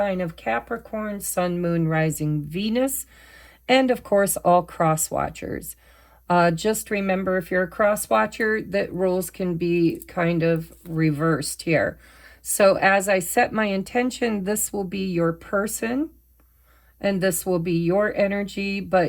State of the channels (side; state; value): both; identical; correlation 1.00